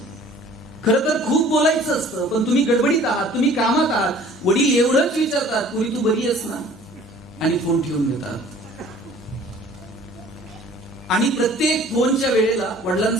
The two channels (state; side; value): normal; both; correlation 0.51